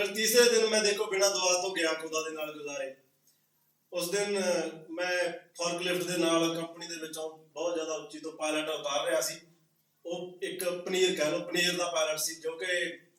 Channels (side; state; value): both; identical; correlation 1.00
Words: ਤੀਸਰੇ ਦਿਨ ਮੈਂ ਦੇਖੋ ਬਿਨਾਂ ਦੁਆ ਤੋਂ ਗਿਆ ਖੁਦਾ ਦੇ ਨਾਲ ਗੁਜ਼ਾਰੇ। ਉਸ ਦਿਨ ਮੈਂ ਫੋਰਕਲਿਫਟ ਦੇ ਨਾਲ ਕੰਪਨੀ ਦੇ ਵਿੱਚੋਂ ਬਹੁਤ ਜ਼ਿਆਦਾ ਉੱਚੀ ਤੋਂ ਪਾਇਲਟ ਉਤਾਰ ਰਿਹਾ ਸੀ। ਉਹ ਇੱਕ ਪਨੀਰ ਕਹਿ ਲਓ, ਪਨੀਰ ਦਾ ਪਾਇਲਟ ਸੀ ਜੋ ਕਿ